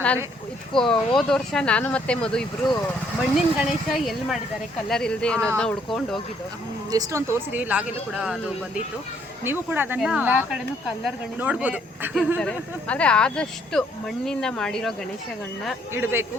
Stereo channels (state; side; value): normal; both; correlation 0.67